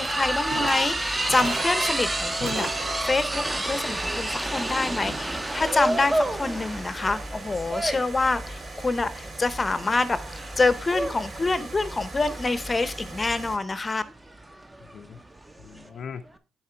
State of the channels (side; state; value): both; normal; correlation 0.93